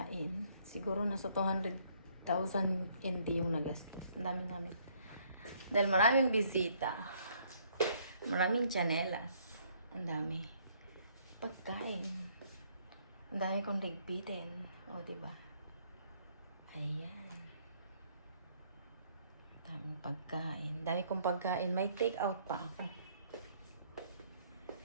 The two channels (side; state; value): both; inverted; correlation -0.65